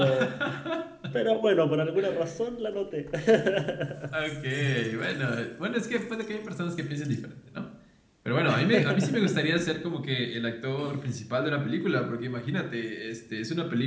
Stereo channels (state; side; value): identical; both; correlation 1.00